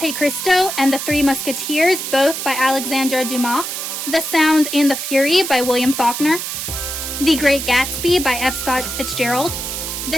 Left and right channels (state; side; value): noise; right; hiss, 5 dB below the sound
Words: Cristo and the Three Musketeers, both by Alexandre Dumas, The Sound and the Fury by William Faulkner, The Great Gatsby by F. Scott Fitzgerald,